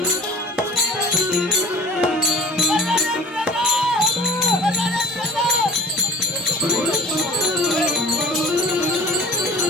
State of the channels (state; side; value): normal; both; correlation 0.43